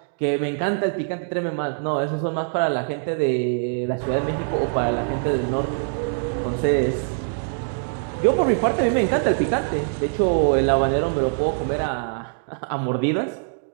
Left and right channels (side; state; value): left; silent; digital silence